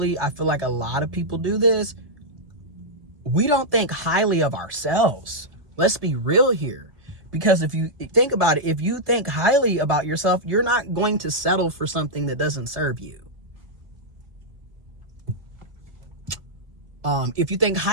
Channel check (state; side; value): late; left; 1.7 ms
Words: I feel like a lot of people do this. We don't think highly of ourselves. Let's be real here. Because if you think about it, if you think highly about yourself, you're not going to settle for something that doesn't serve you. If you think